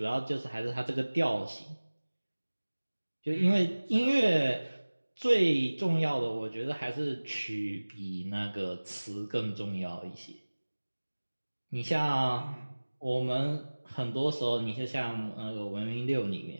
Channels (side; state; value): both; inverted; correlation -1.00